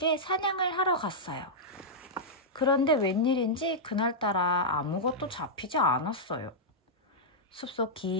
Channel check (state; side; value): normal; both; correlation -0.09